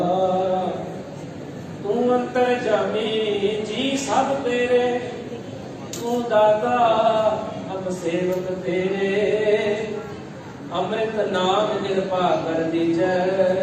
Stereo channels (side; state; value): both; identical; correlation 1.00